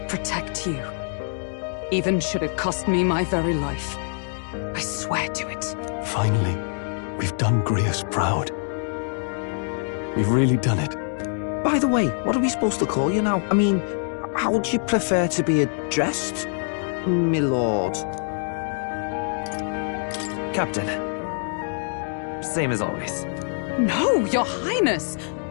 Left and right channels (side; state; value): right; silent; 61 dB below the other